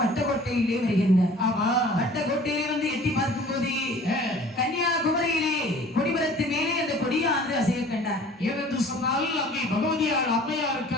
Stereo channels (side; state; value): both; normal; correlation 0.48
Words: வட்டக்கோட்டையிலே வருகின்றார். வட்டக்கோட்டையிலே வந்து எட்டி பார்க்கும் போது கன்னியாகுமரியிலே கொடிமரத்து மேலே அந்த கொடியானது அசைய கண்டார். ஏனென்று சொன்னால் அங்கே பகவதியார் அம்மையாருக்கு